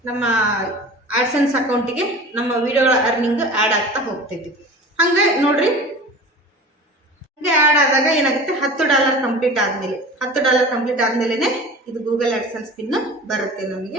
ನಮ್ಮ ಆಡ್ಸೆನ್ಸ್ ಅಕೌಂಟಿಗೆ ನಮ್ಮ ವಿಡಿಯೋಗಳ ಅರ್ನಿಂಗ್ ಆ್ಯಡ್ ಆಗ್ತಾ ಹೋಗ್ತೈತಿ. ಹಾಗೆ ನೋಡ್ರಿ, ಹಾಗೆ ಆ್ಯಡ್ ಆದಾಗ ಏನಾಗುತ್ತೆ, $10 ಕಂಪ್ಲೀಟ್ ಆದಮೇಲೆ $10 ಕಂಪ್ಲೀಟ್ ಆದಮೇಲೆ ಇದು ಗೂಗಲ್ ಆಡ್ಸೆನ್ಸ್ ಪಿನ್ ಬರುತ್ತೆ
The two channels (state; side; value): normal; both; correlation 0.38